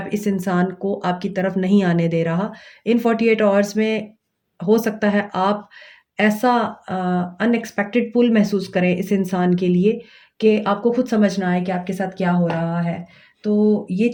इस इंसान को आपकी तरफ नहीं आने दे रहा। इन 48 आवर्स में हो सकता है आप ऐसा अनएक्सपेक्टेड पुल महसूस करें इस इंसान के लिए कि आपको खुद समझ ना आए कि आपके साथ क्या हो रहा है। तो ये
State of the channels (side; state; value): both; identical; correlation 1.00